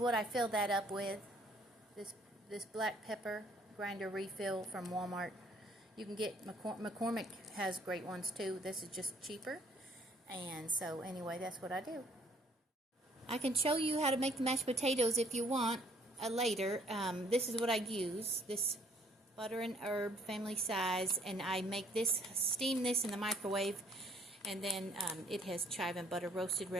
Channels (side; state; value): both; normal; correlation 0.62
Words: I fill that up with. This black pepper grinder refill from Walmart. You can get, McCormick has great ones too. This is just cheaper. And so anyway, that's what I do. I can show you how to make the mashed potatoes if you want later. This is what I use. This butter and herb family size, and I make this, steam this in the microwave, and then it has chive and butter roasted